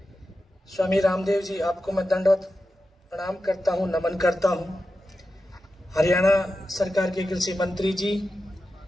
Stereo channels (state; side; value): normal; both; correlation 0.91